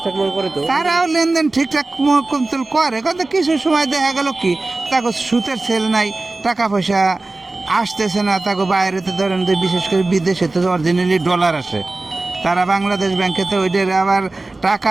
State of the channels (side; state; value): left; quieter; 3.2 dB